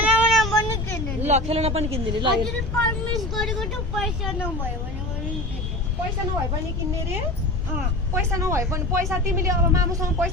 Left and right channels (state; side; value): noise; left; rumble, 4 dB below the sound